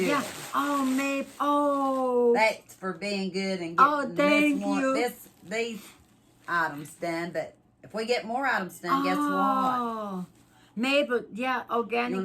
Oh, Mape. Oh. That's for being good and getting these items done. But if we get more items done, guess what? Maple, yeah,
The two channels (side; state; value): both; identical; correlation 1.00